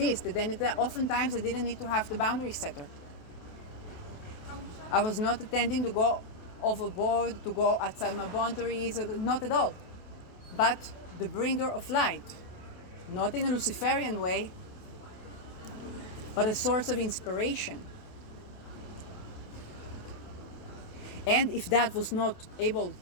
that they need that. Oftentimes they didn't need to have the boundary setter. I was not intending to go overboard, to go outside my boundaries, not at all. But the bringer of light, not in a Luciferian way, but a source of inspiration. And if that was not able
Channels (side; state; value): right; late; 28 ms